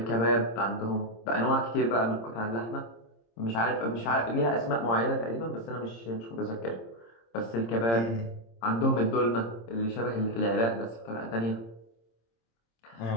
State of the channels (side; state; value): right; late; 26 ms